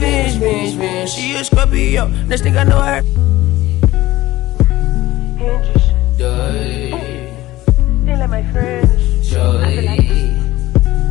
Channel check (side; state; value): right; quieter; 17.0 dB